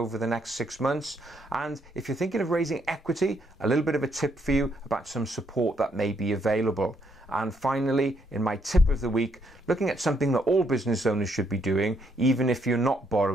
the next 6 months. And if you're thinking of raising equity, a little bit of a tip for you about some support that may be available. And finally, in my tip of the week, looking at something that all business owners should be doing, even if you're not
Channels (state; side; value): normal; both; correlation 0.73